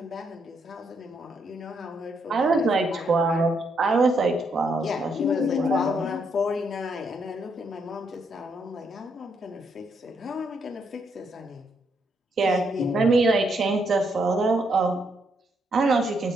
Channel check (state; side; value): normal; both; correlation 0.76